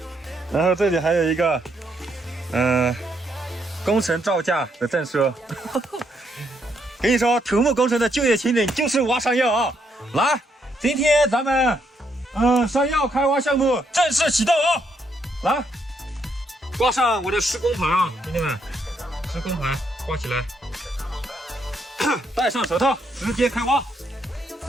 然后这里还有一个工程造价的证书。跟你说，土木工程的就业前景就是挖山药啊！来，今天咱们山药开挖项目正式启动啊！来，挂上我的施工牌啊，兄弟们，施工牌挂起来，戴上手套，直接开挖。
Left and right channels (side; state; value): both; normal; correlation 0.75